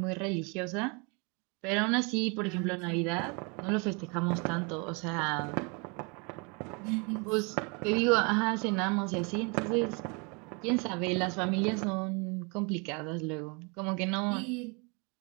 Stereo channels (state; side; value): quieter; left; 32.1 dB